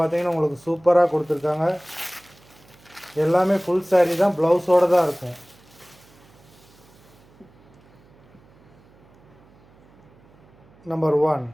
உங்களுக்கு சூப்பராக கொடுத்துருக்காங்க. எல்லாமே ஃபுல் சாரீ தான், ப்ளவுஸோடு தான் இருக்கும்.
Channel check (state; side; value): noise; right; hum, 28 dB below the sound